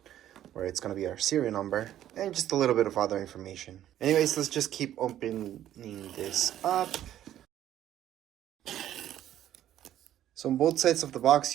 where it's going to be our serial number and just a little bit of other information. Anyways, let's just keep opening this up. So on both sides of the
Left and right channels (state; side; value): quieter; left; 11.9 dB